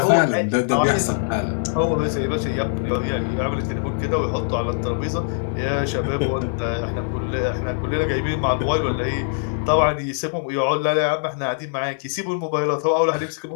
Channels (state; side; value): silent; right; 64 dB below the other